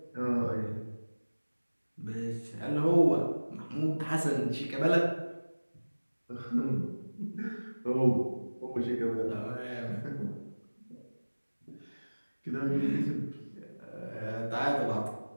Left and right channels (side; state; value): both; inverted; correlation -1.00